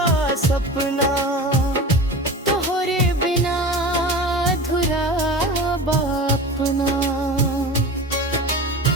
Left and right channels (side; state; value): both; normal; correlation 0.32